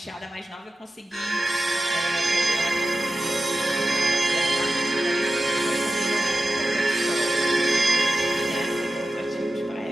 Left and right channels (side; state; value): both; normal; correlation 0.91